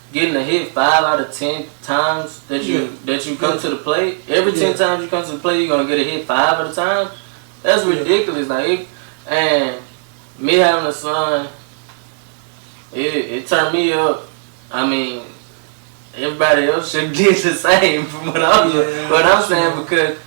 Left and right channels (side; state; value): left; silent; digital silence